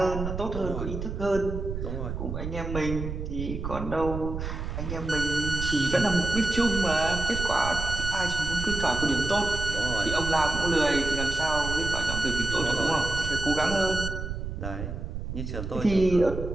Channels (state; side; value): noise; right; rumble, 5 dB below the sound